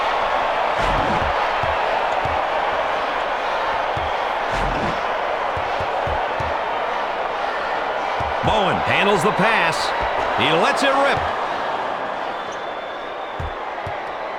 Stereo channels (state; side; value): identical; both; correlation 1.00